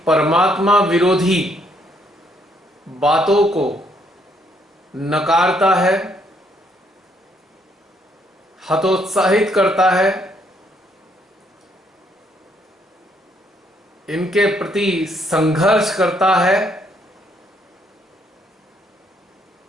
परमात्मा विरोधी बातों को नकारता है, हतोत्साहित करता है, इनके प्रति संघर्ष करता है,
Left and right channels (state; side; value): normal; both; correlation 0.70